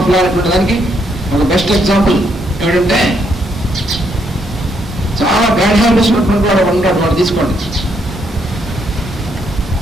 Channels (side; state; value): both; normal; correlation 0.74